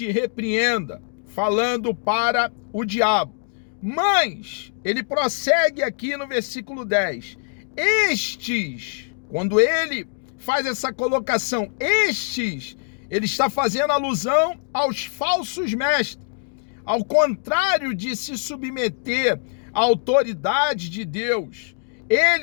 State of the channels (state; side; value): silent; right; digital silence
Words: repreenda, falando para o diabo. Mas ele prossegue aqui no versículo 10. Estes, quando ele faz essa colocação, estes, ele está fazendo alusão aos falsos mestres. Ao contrário de se submeter à autoridade de Deus,